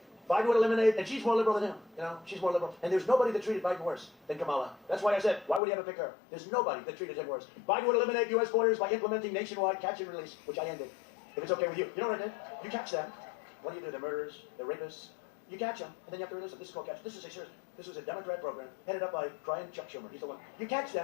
Biden would eliminate, and she's more liberal than him. You know, she's more liberal. And there's nobody that treated Biden worse than Kamala. That's why I said, why would he ever pick her? There's nobody that treated him worse. Biden would eliminate U.S. borders by implementing nationwide catch and release, which I ended. If it's okay with you. You know what I did? You catch them. What do? They're murderers, they're rapists, You catch them, and then you have to release them. This is called catch. This is a serious. This was a Democrat program headed up by Chuck Schumer. He's the one. You catch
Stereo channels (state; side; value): drops out; right; at 5.6 s